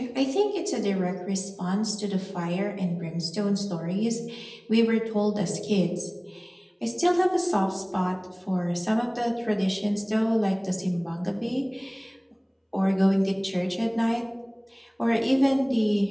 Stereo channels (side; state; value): both; identical; correlation 1.00